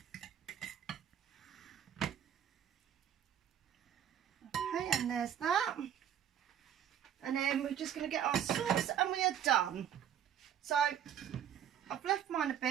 And there's that, and then we're just going to get our sauce and we are done. So I've left mine a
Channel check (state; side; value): quieter; left; 9.6 dB